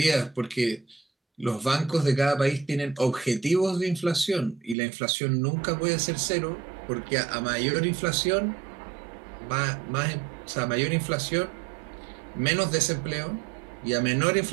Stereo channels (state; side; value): drops out; left; at 4.8 s